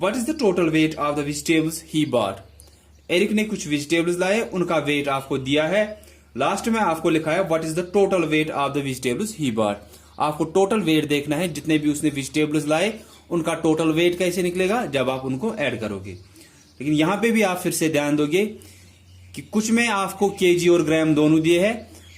is the total weight of the vegetables he bought? Eric ने कुछ vegetables लाए, उनका wait आपको दिया है। Last में आपको लिखा है what is the total weight of the vegetables he bought. आपको टोटल वेट देखना है, जितने भी उसने वेजिटेबल्स लाए उनका टोटल वेट कैसे निकलेगा, जब आप उनको ऐड करोगे। लेकिन यहां पे भी आप फिर से ध्यान दोगे कि कुछ में आपको केजी और ग्राम दोनों दिए हैं,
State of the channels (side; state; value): both; identical; correlation 1.00